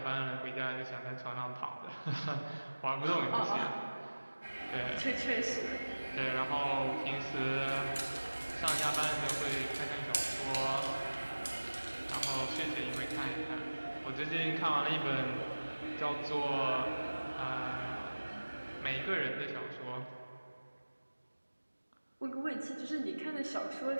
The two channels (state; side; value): inverted; both; correlation -1.00